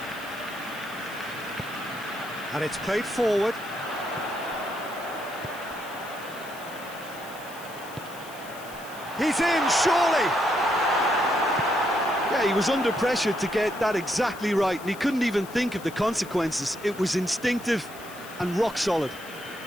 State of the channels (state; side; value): noise; left; hiss, 18 dB below the sound